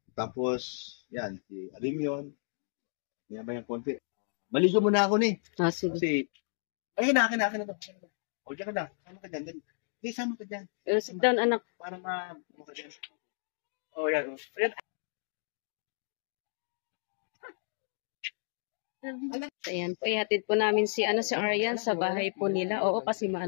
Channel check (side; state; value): right; silent; digital silence